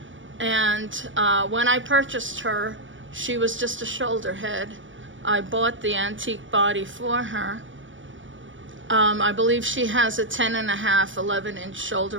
And when I purchased her, she was just a shoulder head. I bought the antique body for her. I believe she has a 10.5, 11-inch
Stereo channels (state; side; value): late; left; 0.56 ms